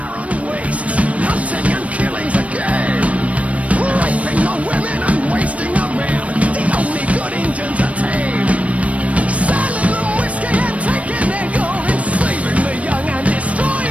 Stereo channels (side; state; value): left; late; 0.065 ms